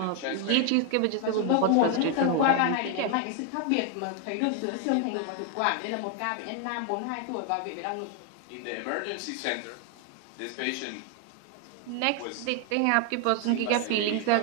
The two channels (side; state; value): both; different; correlation 0.00